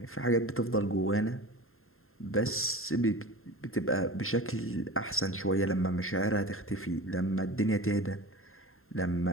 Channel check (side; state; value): right; late; 0.61 ms